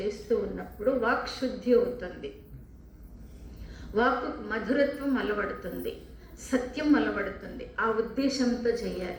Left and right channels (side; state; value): both; identical; correlation 1.00